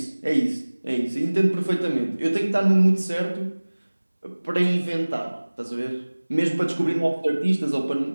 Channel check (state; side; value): inverted; both; correlation -1.00